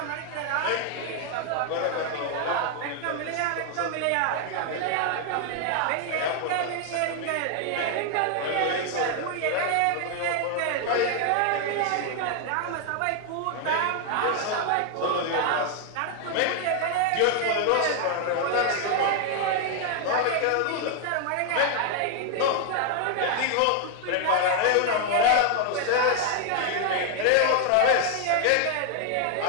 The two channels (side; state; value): both; different; correlation 0.00